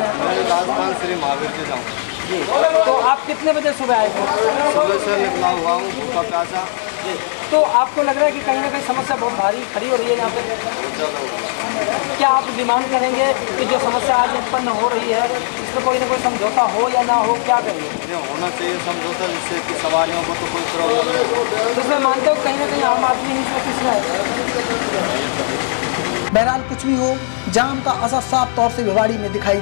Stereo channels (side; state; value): right; silent; 67 dB below the other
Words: श्री महावीर से जाऊँ। तो आप कितने बजे सुबह आए थे? सुबह से निकला हुआ हूँ, भूखा प्यासा। तो आपको लग रहा है कि कहीं ना कहीं समस्या बहुत भारी खड़ी हो रही है यहाँ पे? बहुत ज़्यादा। क्या आप डिमांड करेंगे कि जो समस्या आज उत्पन्न हो रही है इसमें कोई ना कोई समझौता हो या ना हो, क्या करेंगे? ये होना चाहिए समझौता, जिससे कि सवारियों को तो कोई प्रॉब्लम नहीं हो। तो इसमें मानते हो कहीं ना कहीं आम आदमी ही इसमें किसमें है? बहरहाल कुछ भी हो, जाम का असर साफ तौर से भिवाड़ी में दिखाई